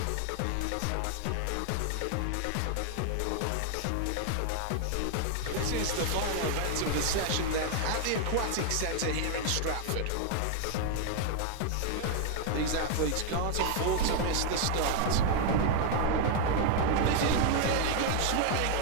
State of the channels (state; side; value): different; both; correlation 0.00